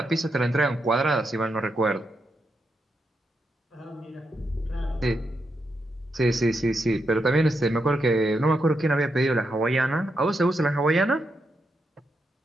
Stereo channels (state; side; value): normal; both; correlation 0.83